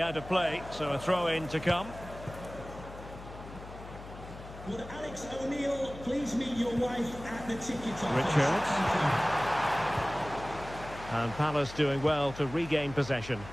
out of play, so a throw-in to come. Would Alex O'Neill please meet your wife at the ticket office? Richards. And Palace doing well to regain possession.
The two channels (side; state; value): left; noise; hum, 14 dB below the sound